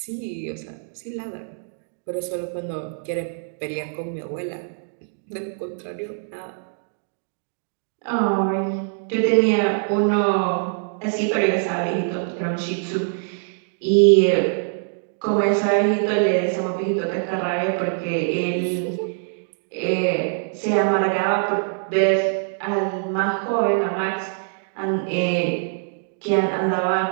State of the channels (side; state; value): left; silent; digital silence